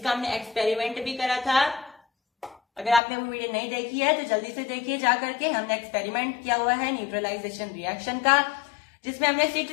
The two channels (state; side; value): drops out; right; at 3.0 s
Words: हमने एक्सपेरिमेंट भी करा था। अगर आपने वो वीडियो नहीं देखी है तो जल्दी से देखिए जा करके, हमने एक्सपेरिमेंट किया हुआ है न्यूट्रलाइजेशन रिएक्शन का, जिसमें हमने